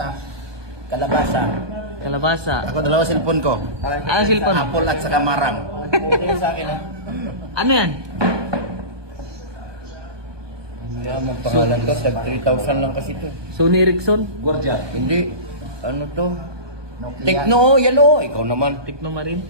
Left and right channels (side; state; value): left; late; 1.2 ms